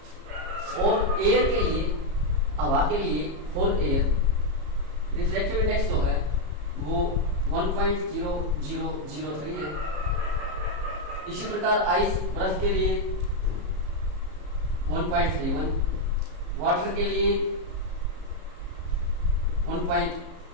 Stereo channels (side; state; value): left; late; 34 ms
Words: और एयर के लिए, हवा के लिए, फॉर एयर रिफ्रैक्टिव इंडेक्स जो है वो 1.0003 है। इसी प्रकार आइस, बर्फ के लिए 1.31, वाटर के लिए